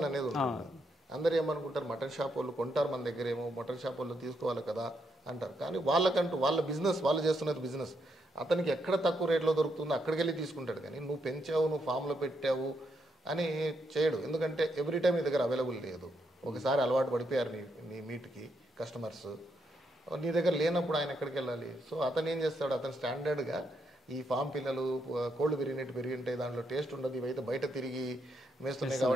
అనేది ఉంటుంది. అందరు ఏమనుకుంటారు, మటన్ షాప్ వాళ్ళు కొంటారు మన దగ్గర, ఏమో మటన్ షాప్ వాళ్ళు తీసుకోవాలి కదా అంటారు. కానీ వాళ్ళకంటూ వాళ్ళ బిజినెస్, వాళ్ళు చేస్తున్నది బిజినెస్. అతనికి ఎక్కడ తక్కువ రేట్లో దొరుకుతుందో అక్కడికి వెళ్ళి తీసుకుంటాడు. కానీ నువ్వు పెంచావు, నువ్వు ఫామ్లో పెట్టావు అని చేయడు. ఎందుకంటే ఎవ్రీ టైం నీ దగ్గర అవైలబుల్ లేదు. ఒకసారి అలవాటు పడిపోయారు నీ మీట్కి కస్టమర్స్, నీ దగ్గర లేనప్పుడు ఆయన ఎక్కడికి వెళ్ళాలి? సో అతను ఏం చేస్తాడు, అతను స్టాండర్డ్గా ఈ ఫామ్ పిల్లలు కోళ్ళు పెరిగినట్టు పెరిగి ఉంటాయి, దాంట్లో టేస్ట్ ఉండదు, ఇవైతే బయట తిరిగి వేస్తున్నాయి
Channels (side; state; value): both; normal; correlation 0.78